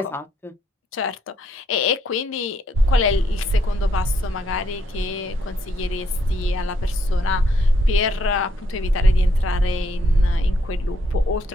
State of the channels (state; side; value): normal; both; correlation 0.73